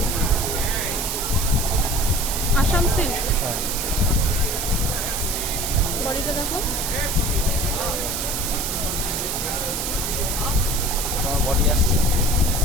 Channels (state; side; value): noise; right; hiss, 2 dB below the sound